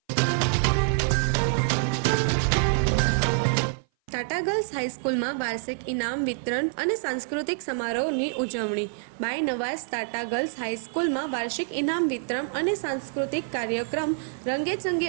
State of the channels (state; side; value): silent; left; 57 dB below the other